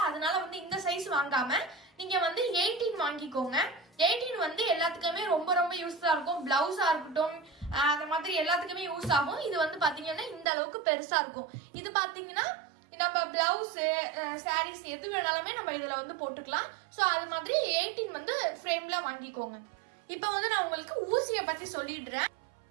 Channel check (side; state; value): left; drops out; at 10.5 s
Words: அதனால வந்து இந்த சைஸ் வாங்காம நீங்க வந்து 18 வாங்கிக்கோங்க. 18 வந்து எல்லாத்துக்குமே ரொம்ப ரொம்ப யூஸ்ஃபுல்லா இருக்கும். பிளவுஸா இருக்கட்டும், அந்த மாதிரி எல்லாத்துக்குமே யூஸ் ஆகும். இது வந்து பாத்தீங்கன்னா இந்த அளவுக்கு பெருசா இருக்கும். இது பாத்தீங்கன்னா நம்ம பிளவுஸ், சாரீஸ் எது வேணாலுமே நம்ம இதுல வந்து போட்டுக்கலாம். சோ அது மாதிரி 18 வந்து ஃப்ரேம்ல வாங்கிக்கோங்க. இப்ப வந்து நான் உங்களுக்கு ஊசியை பத்தி சொல்லிடுறேன்.